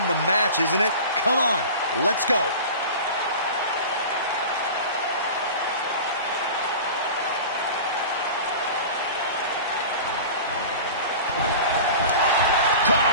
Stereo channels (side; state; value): both; inverted; correlation -0.36